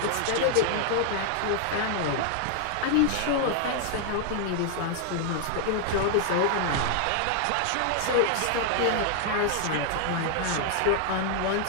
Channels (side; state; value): both; different; correlation 0.00